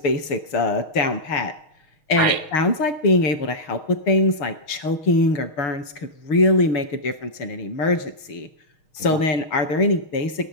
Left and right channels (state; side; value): late; right; 6.5 ms